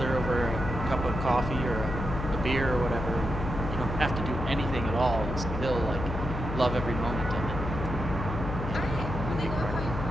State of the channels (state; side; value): noise; left; hum, 5 dB below the sound